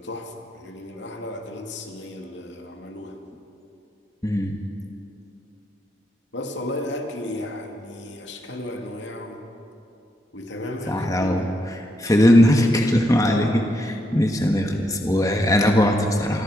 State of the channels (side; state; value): both; normal; correlation 0.79